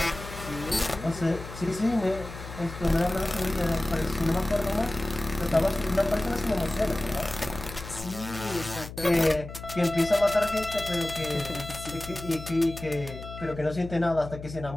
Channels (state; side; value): noise; left; hum, 12 dB below the sound